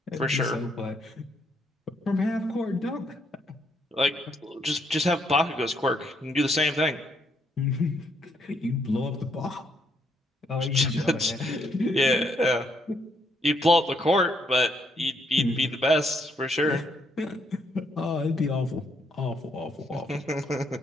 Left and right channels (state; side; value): normal; both; correlation 0.73